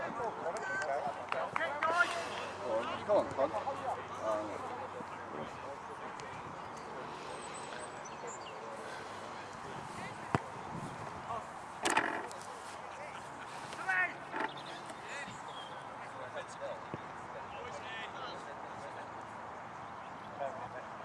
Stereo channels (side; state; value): both; identical; correlation 1.00